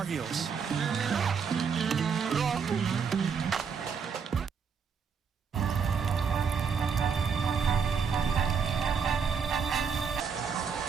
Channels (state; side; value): quieter; left; 6.3 dB